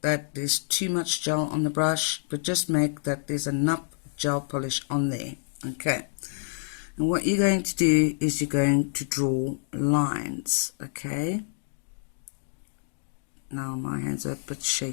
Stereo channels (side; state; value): right; silent; digital silence